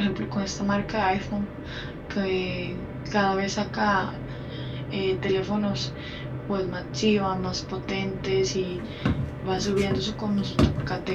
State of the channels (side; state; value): both; identical; correlation 1.00